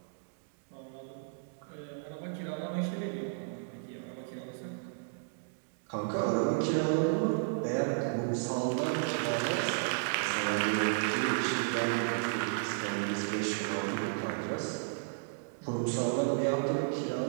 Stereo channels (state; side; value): silent; left; digital silence